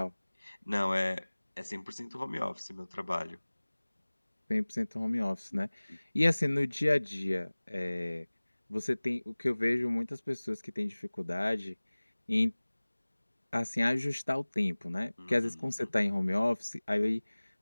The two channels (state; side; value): inverted; both; correlation -1.00